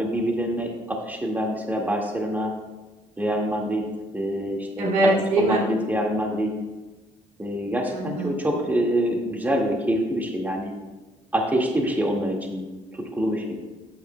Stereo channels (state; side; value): normal; both; correlation 0.69